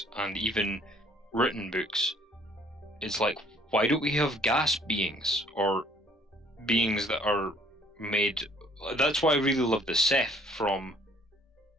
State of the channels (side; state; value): both; normal; correlation 0.59